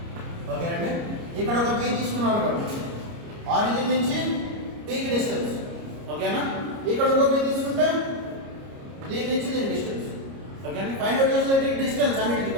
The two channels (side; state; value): left; late; 29 ms